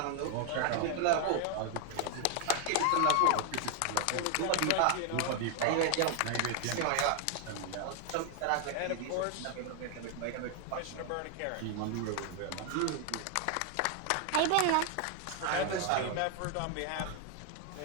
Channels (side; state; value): both; different; correlation 0.00